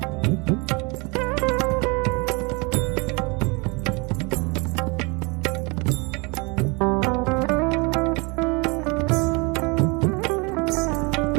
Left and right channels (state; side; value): quieter; left; 29.0 dB